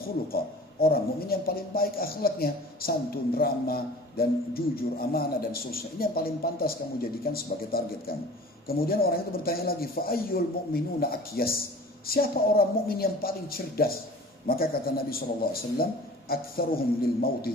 khuluqa. Orang mukmin yang paling baik akhlaknya, santun, ramah, dan jujur, amanah, dan seterusnya. Ini yang paling pantas kamu jadikan sebagai target kamu. Kemudian orang itu bertanya lagi, fa'ayyul mu'minuna akyas? Siapa orang mukmin yang paling cerdas? Maka kata Nabi SAW, aktsaruhum lil mauti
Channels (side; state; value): both; normal; correlation 0.43